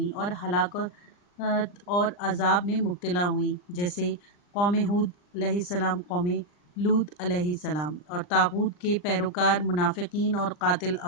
اور ہلاکت اور عذاب میں مبتلا ہوئیں، جیسے قوم ہود علیہ السلام، قوم لوط علیہ السلام، اور طاغوت کے پیروکار منافقین اور قاتل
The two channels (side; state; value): right; late; 39 ms